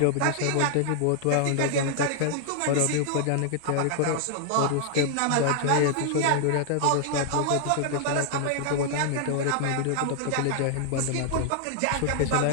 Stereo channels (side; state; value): both; different; correlation -0.01